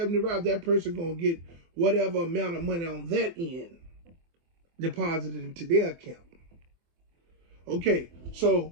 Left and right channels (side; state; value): left; late; 24 ms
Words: rides, that person going to get whatever amount of money on that end deposited into their account. Okay,